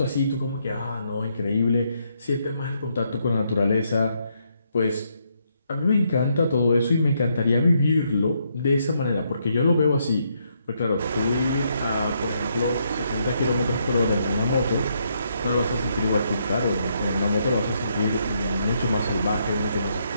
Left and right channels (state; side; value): inverted; both; correlation -0.75